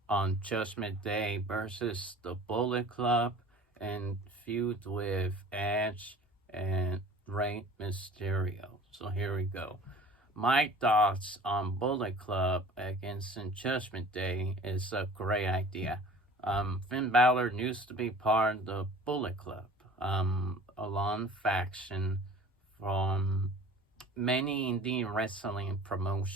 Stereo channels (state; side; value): normal; both; correlation 0.45